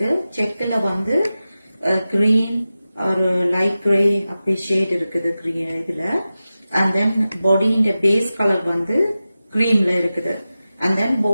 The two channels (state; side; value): inverted; both; correlation -0.94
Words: செக்ல வந்து கிரீன் ஒரு லைட் கிரே அப்படி ஷேட் இருக்குது இதுல. அண்ட் தென் பாடியின் பேஸ் கலர் வந்து கிரீம்ல இருக்குது. அண்ட் தென்